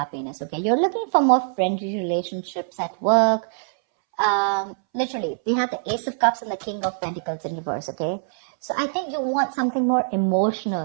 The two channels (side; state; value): left; silent; 63 dB below the other